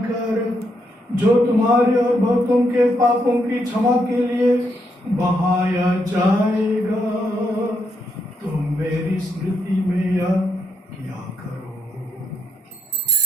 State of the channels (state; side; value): normal; both; correlation 0.78